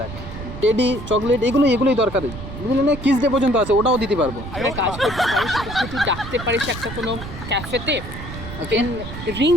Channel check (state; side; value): noise; right; rumble, 10 dB below the sound